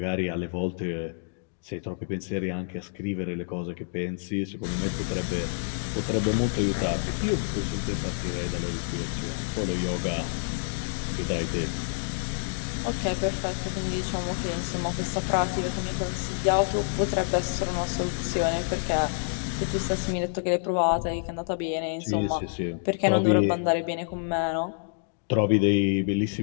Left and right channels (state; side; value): silent; right; digital silence